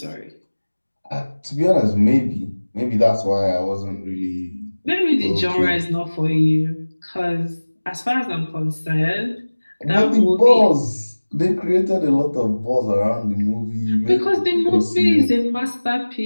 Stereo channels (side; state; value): both; inverted; correlation -1.00